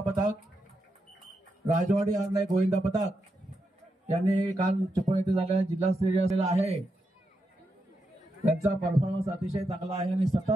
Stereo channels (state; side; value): normal; both; correlation 0.85